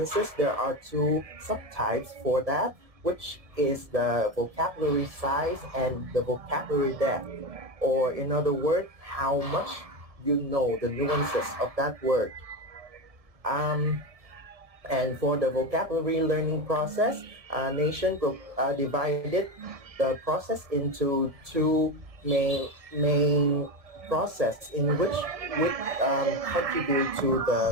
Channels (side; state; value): left; late; 1.7 ms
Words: there are 2 subtypes for that, which is the vocabulary size and the vocabulary depth, or in other words, how much you know the nuances of that word. And for the vocabulary learning process, Nation divided the process into 2 main process in which would contribute to